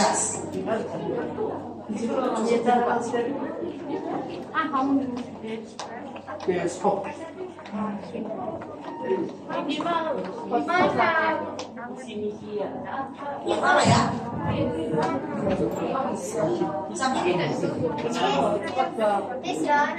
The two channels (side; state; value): both; identical; correlation 1.00